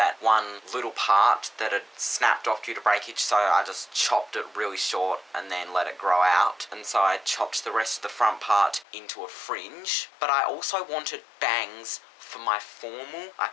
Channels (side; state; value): right; drops out; at 8.8 s